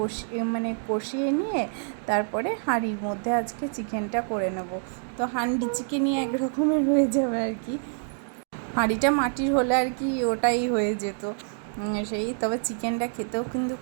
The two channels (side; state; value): left; silent; digital silence